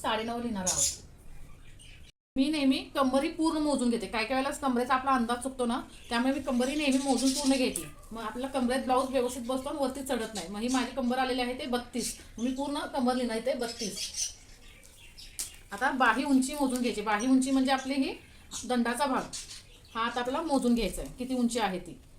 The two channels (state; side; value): identical; both; correlation 1.00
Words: लिहिणार आहोत। मी नेहमी कंबरी पूर्ण मोजून घेते। काय काय वेळेला कमरेचा आपला अंदाज चुकतो ना, त्यामुळे मी कंबरी नेहमी मोजून पूर्ण घेते। मग आपल्याला कमरेत ब्लाऊज व्यवस्थित बसतो आणि वरती चढत नाही। मग ही माझी कंबर आलेली आहे ते 32, मी पूर्ण कंबर लिहिणार ते 32। आता बाही उंची मोजून घ्यायची। बाही उंची म्हणजे आपली ही दंडाचा भाग, हा आता आपल्याला मोजून घ्यायचा आहे किती उंची आहे ती।